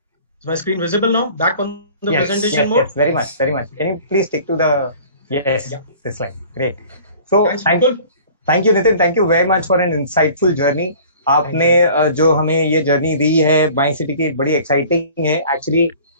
Is my screen visible now? Back on the presentation mode? Yes, very much, very much. Can you please stick to the this slide? Great. So Thanks, Mukul. thank you, Nitin. Thank you very much for an insightful journey. आपने जो हमें ये जर्नी दी है माई सिटी की बड़ी एक्साइटिंग है. एक्चुअली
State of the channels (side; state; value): both; inverted; correlation -0.47